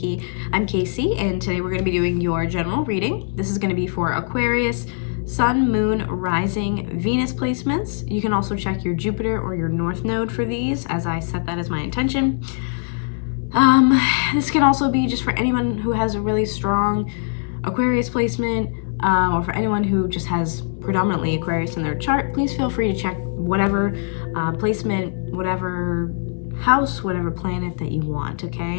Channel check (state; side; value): silent; right; 65 dB below the other